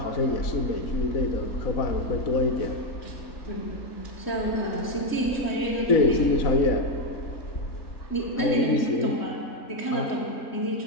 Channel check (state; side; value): late; right; 4.0 ms